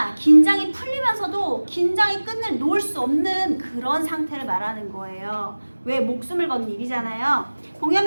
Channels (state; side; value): inverted; both; correlation -1.00